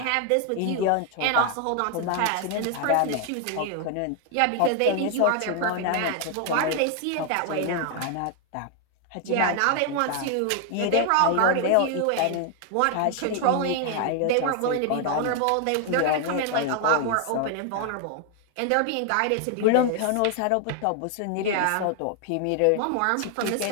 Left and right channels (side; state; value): both; different; correlation 0.00